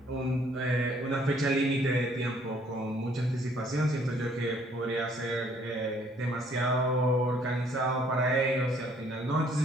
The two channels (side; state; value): both; normal; correlation 0.62